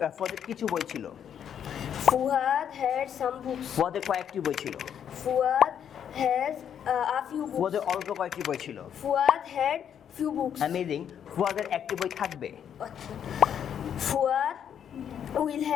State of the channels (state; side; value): quieter; right; 8.8 dB